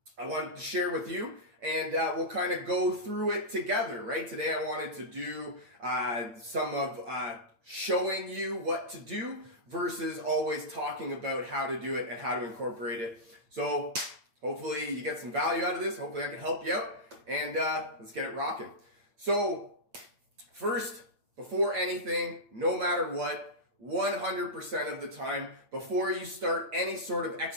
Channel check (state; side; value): late; left; 8.7 ms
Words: wanted to share with you. And we'll kind of go through it together, right? Today I wanted to do some of showing you what to do versus always talking about how to do it and how to incorporate it. So hopefully you get some value out of this. Hopefully I can help you out. And let's get it rocking. So first, before anything, no matter what, 100% of the time, before you start any sort of